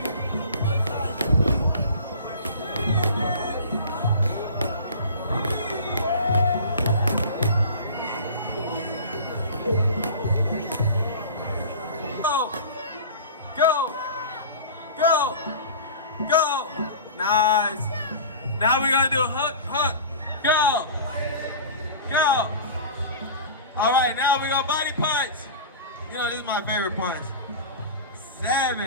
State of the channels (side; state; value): both; inverted; correlation -0.37